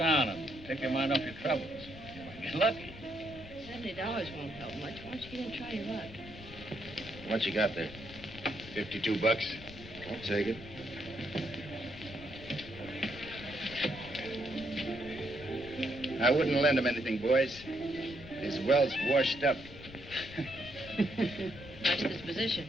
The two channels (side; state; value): left; noise; rumble, 16 dB below the sound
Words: and take your mind off your troubles? You might get lucky. $70 won't help much. Why don't you get in and try your luck? What you got there? $52. I'll take it. I wouldn't lend him anything, boys. His well's washed up. Nice disposition.